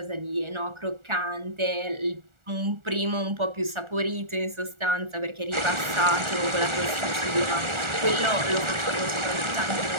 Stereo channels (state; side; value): late; left; 1.4 ms